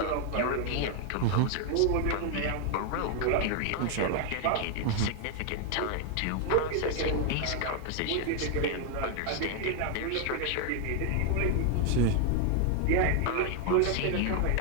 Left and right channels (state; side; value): different; both; correlation 0.01